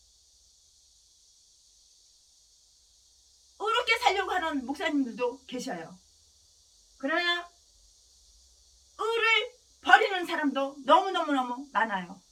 이렇게 살려고 하는 목사님들도 계셔요. 그러나 의를 버리는 사람도 너무너무 많아요.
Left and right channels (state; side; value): identical; both; correlation 1.00